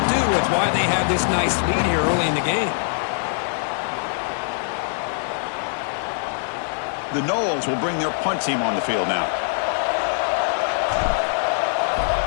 do with why they have this nice lead here early in the game. The Noles will bring their punt team on the field now.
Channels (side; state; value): right; silent; 56 dB below the other